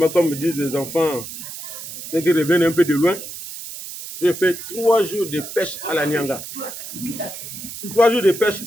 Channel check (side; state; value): right; noise; hiss, 10 dB below the sound